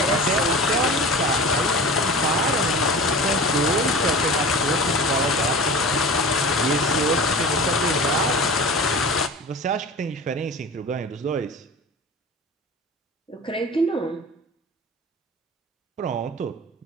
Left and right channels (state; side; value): normal; both; correlation 0.35